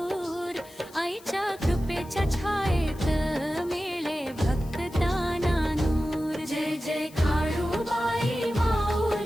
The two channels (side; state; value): left; noise; hiss, 23 dB below the sound